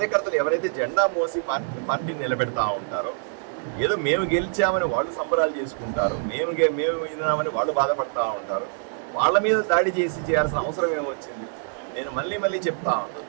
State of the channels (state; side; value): silent; left; 61 dB below the other